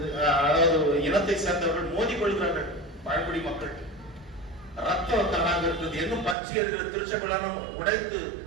அதாவது இனத்தை சேர்ந்தவர்கள் மோதி கொள்கிறார்கள். பழங்குடி மக்கள் ரத்த கலனாக இருக்கிறது. இன்னும் பற்றி இருக்கிற திருச்சபைகளும் உடைத்து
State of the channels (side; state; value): left; drops out; at 6.4 s